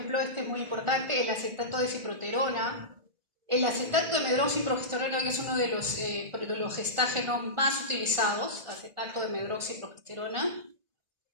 este es muy importante, el acetato de ciproterona, el acetato de medroxiprogesterona, que es uno de los gestágenos más utilizados, acetato de medroxiprogesterona,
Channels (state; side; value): late; left; 1.4 ms